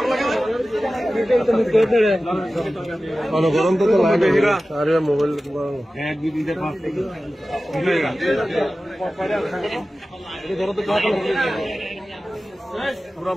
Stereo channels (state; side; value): normal; both; correlation 0.95